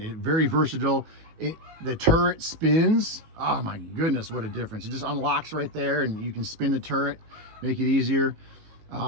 very versatile. The turret spins. Oh my goodness, what a difference. It just unlocks right there and you can spin the turret, make it easier.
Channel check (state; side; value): late; left; 19 ms